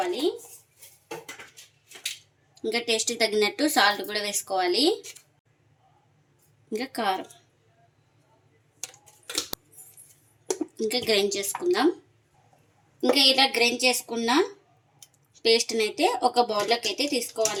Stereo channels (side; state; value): both; identical; correlation 1.00